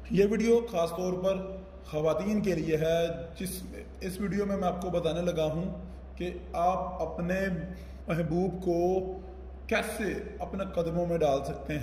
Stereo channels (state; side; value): identical; both; correlation 1.00